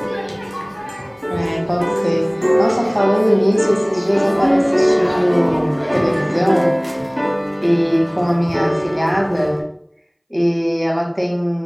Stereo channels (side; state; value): both; identical; correlation 1.00